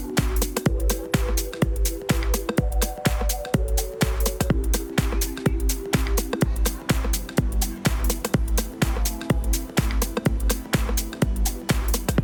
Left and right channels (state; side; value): identical; both; correlation 1.00